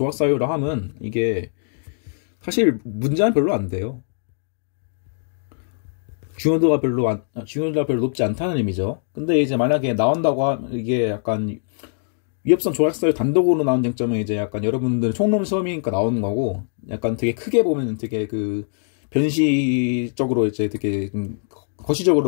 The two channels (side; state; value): right; silent; digital silence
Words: 하면 이게 사실 문제는 별로 안 돼요. 중요도가 별로 높지 않다는 의미죠. 근데 이제 만약에 나온다고 하면 이게 약간 위협성 조각사유 단독으로 나온 쟁점은 이제 약간 여러분들 총론 시험이니까 나오는 거고, 약간 되게 크게 보면 되게 그 변시적으로 이제 되게